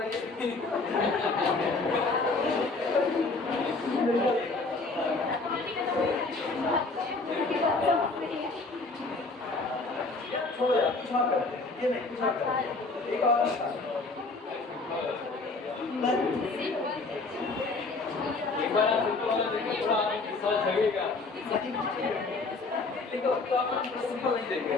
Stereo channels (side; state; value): right; quieter; 3.7 dB